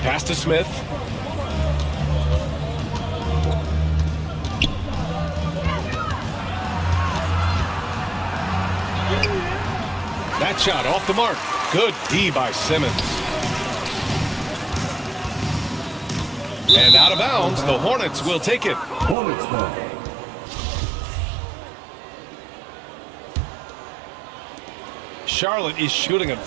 Pass to Smith. That shot off the mark. Good D by Simmons. And out of bounds, the Hornets will take it. Hornets ball. Charlotte is shooting a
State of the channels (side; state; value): left; drops out; at 19.2 s